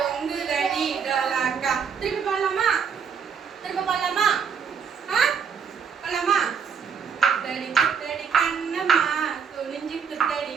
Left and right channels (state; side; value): quieter; left; 6.8 dB